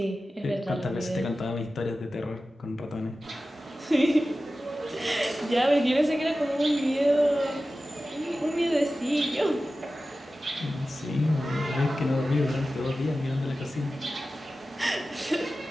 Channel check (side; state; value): both; normal; correlation 0.94